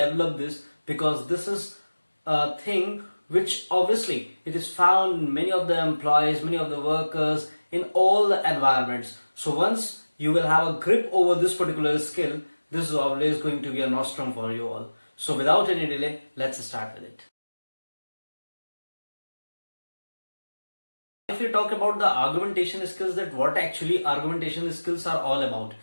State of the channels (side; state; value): both; inverted; correlation -1.00